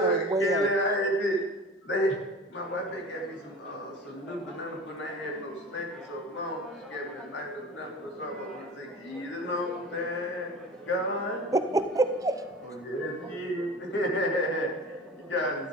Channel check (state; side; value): normal; both; correlation 0.37